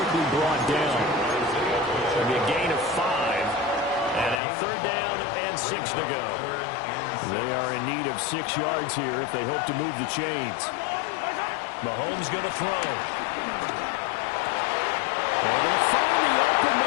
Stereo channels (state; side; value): drops out; right; at 4.4 s